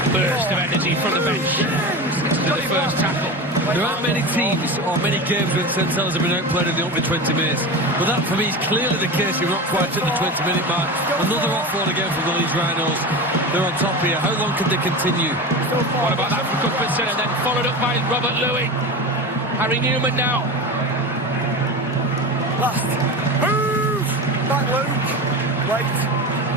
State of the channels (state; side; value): normal; both; correlation 0.26